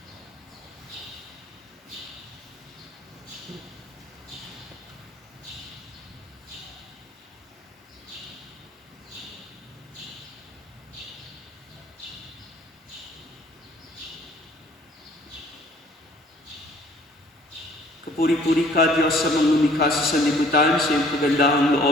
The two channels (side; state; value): both; normal; correlation 0.56